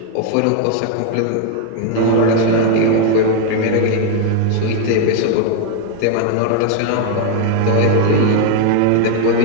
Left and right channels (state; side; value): different; both; correlation 0.01